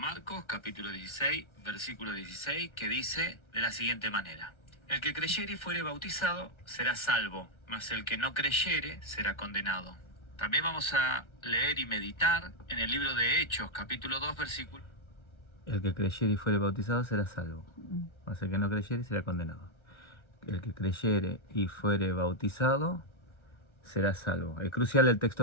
capítulo 16, versículo 16, que dice de la siguiente manera: El que creyere y fuere bautizado será salvo, mas el que no creyere será condenado. También vamos a leer y meditar en el libro de Hechos, capítulo 2, versículo. El que creyere y fuere bautizado será salvo, mas el que no creyere será condenado. El que creyere y fuere bautizado será salvo. Es crucial el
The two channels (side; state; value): right; late; 1.3 ms